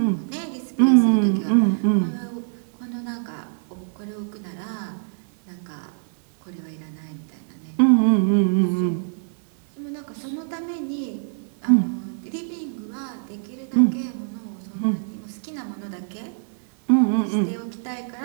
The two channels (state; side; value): silent; left; 62 dB below the other